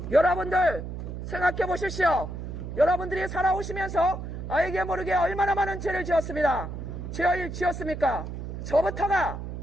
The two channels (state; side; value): noise; right; hum, 7 dB below the sound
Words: 여러분들 생각해 보십시오. 여러분들이 살아오시면서 알게 모르게 얼마나 많은 죄를 지었습니다. 죄를 지었습니까? 저부터가